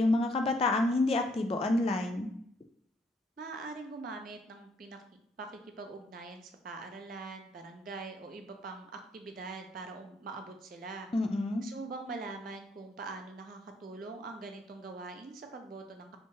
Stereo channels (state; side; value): normal; both; correlation 0.69